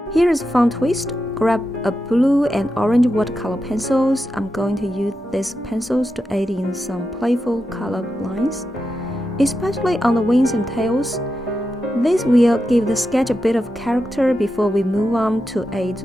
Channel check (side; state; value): both; normal; correlation 0.88